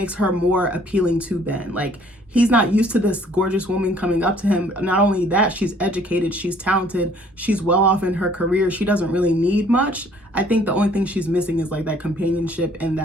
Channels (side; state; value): both; normal; correlation 0.59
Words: her more appealing to Ben. Like, he's not used to this gorgeous woman coming up to him. Not only that, she's educated, she's talented, she's well off in her career. She doesn't really need much. I think the only thing she's missing is like that companionship and